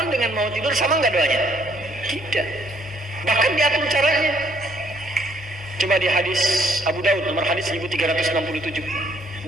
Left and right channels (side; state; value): both; normal; correlation 0.66